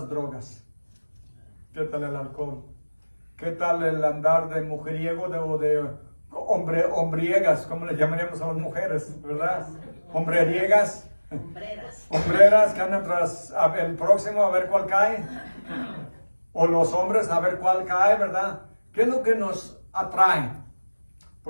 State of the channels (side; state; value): both; inverted; correlation -1.00